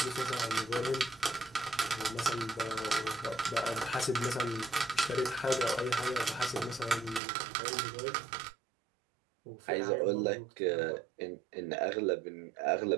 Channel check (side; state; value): left; drops out; at 7.2 s